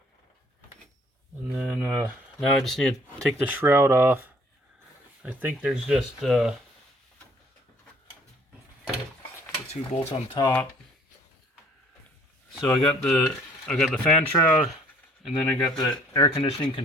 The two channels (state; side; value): normal; both; correlation 0.58